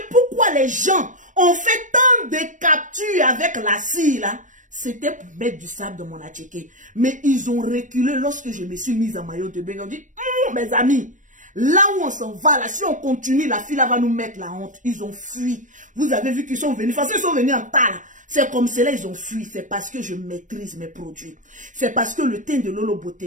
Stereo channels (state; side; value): late; left; 0.37 ms